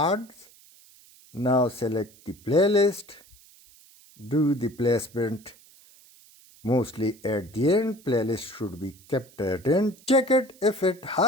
Now select the playlist. Do the placement mostly at the end. Playlist should be kept at end. Check it if it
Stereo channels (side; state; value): right; noise; hiss, 26 dB below the sound